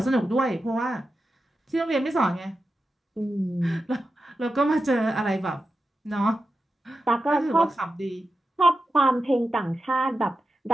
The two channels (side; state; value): both; normal; correlation 0.91